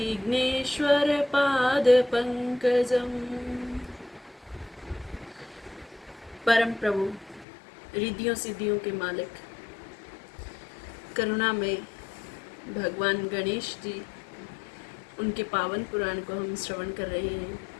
परम प्रभु, रिद्धियों सिद्धियों के मालिक, करुणा में भगवान गणेश जी, उनके पावन पुराण को हम श्रवण कर रहे हैं।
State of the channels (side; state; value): right; drops out; at 7.5 s